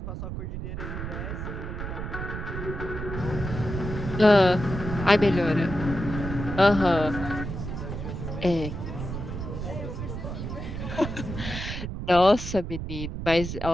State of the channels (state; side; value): noise; right; rumble, 6 dB below the sound